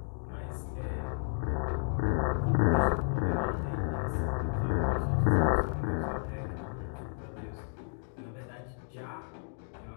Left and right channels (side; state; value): right; silent; digital silence